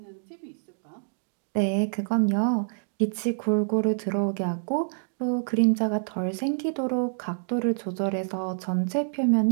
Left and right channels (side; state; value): left; silent; digital silence